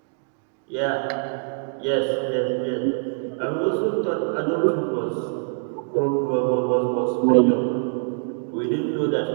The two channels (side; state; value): left; silent; digital silence